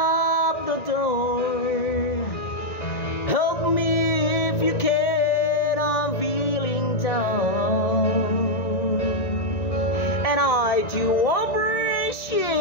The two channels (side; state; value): right; late; 1.9 ms